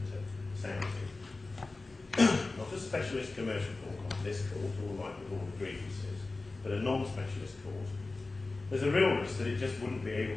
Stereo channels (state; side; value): quieter; right; 3.4 dB